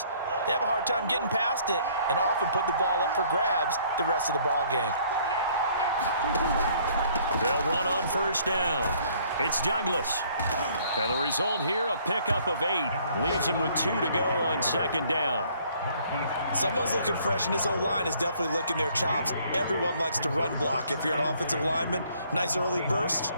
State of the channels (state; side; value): inverted; both; correlation -0.61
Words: they have a hard time getting past it and often put the ball up for grabs the rest of the ball game. They'll run on first down. It's Douglas. And the result here, a pickup of 8. Leaves him with 2 to go on 2nd down. Someone's looking fresh, and his O-line is definitely licking their chops. Everyone likes to run block. If you're an offensive lineman, nice early burst,